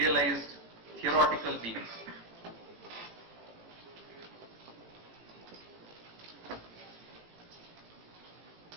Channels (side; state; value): left; late; 18 ms